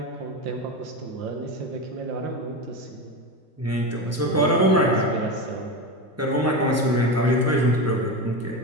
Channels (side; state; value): both; normal; correlation 0.20